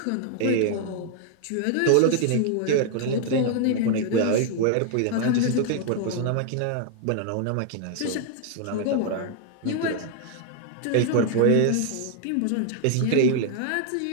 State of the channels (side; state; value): both; different; correlation 0.00